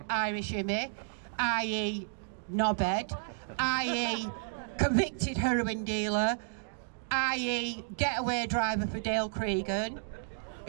Irish Immy, i.e. knobhead, i.e. convicted heroin dealer, i.e. getaway driver for Dale Cregan,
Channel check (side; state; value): left; silent; digital silence